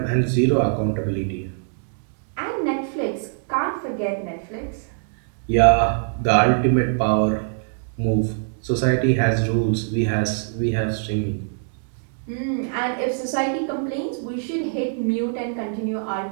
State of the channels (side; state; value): left; silent; digital silence